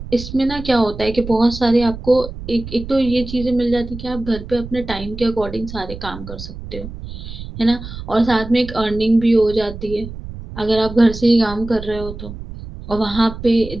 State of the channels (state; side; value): noise; right; rumble, 11 dB below the sound